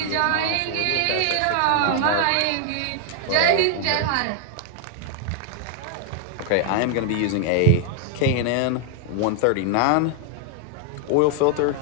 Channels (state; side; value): different; both; correlation 0.00